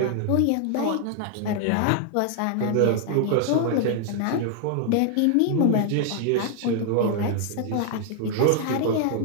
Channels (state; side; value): different; both; correlation 0.00